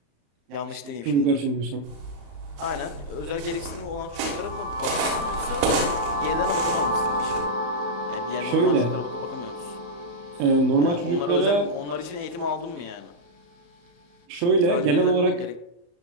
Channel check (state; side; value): late; left; 35 ms